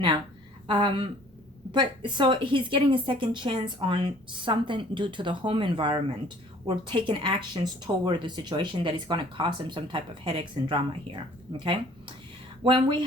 but so he's getting a second chance on something due to the home environment, or taking actions toward the situation that is going to cause him some type of headaches and drama here. Okay, when we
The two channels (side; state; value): both; normal; correlation 0.54